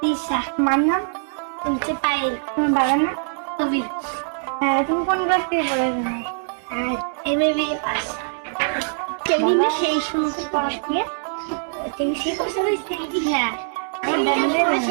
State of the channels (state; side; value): silent; left; digital silence